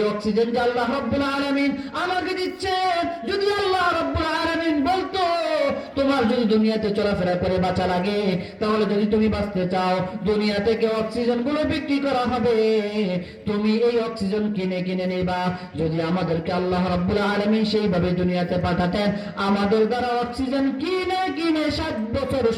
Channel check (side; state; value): both; identical; correlation 1.00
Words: অক্সিজেন যে আল্লাহ রব্বুল আলামিন আমাকে দিচ্ছে, যদি আল্লাহ রব্বুল আলামিন বলতো তোমার যদি দুনিয়াতে চলাফেরা করে বাঁচা লাগে, তাহলে যদি তুমি বাঁচতে চাও দুনিয়া থেকে অক্সিজেন গুলো বিক্রি করা হবে, তুমি এই অক্সিজেন কিনে কিনে নেবা। যদি আমাদেরকে আল্লাহ রব্বুল আলামিন সেইভাবে দুনিয়াতে পাঠাতেন, আমাদের দ্বারা অক্সিজেন কিনে কিনে 60 বছর